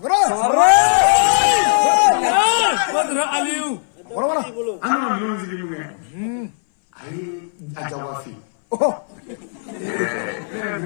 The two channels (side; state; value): right; silent; 60 dB below the other